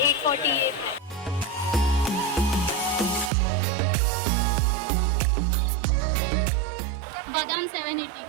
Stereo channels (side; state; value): left; drops out; at 3.3 s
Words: 840। बादाम 780